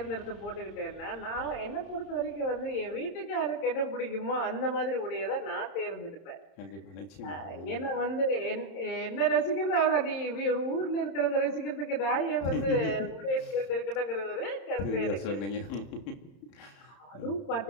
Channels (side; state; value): right; late; 31 ms